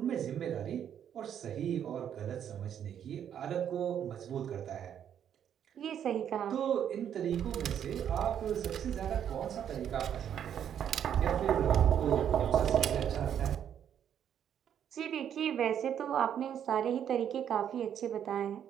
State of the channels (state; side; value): quieter; left; 9.2 dB